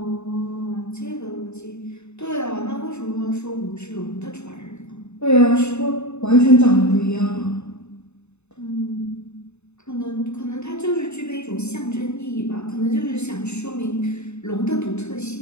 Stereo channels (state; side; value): late; right; 0.81 ms